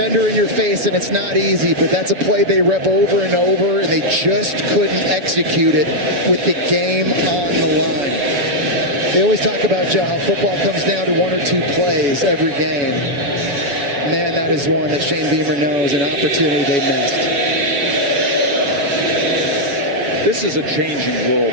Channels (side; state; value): left; late; 7.1 ms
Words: in your face, and it's not easy, but that's a play they rep over and over, and they just couldn't execute it with the game on the line. They always talk about, Joe, how football comes down to one or two plays every game. Man, that is one that Shane Beamer knows, an opportunity they missed. This is a changing world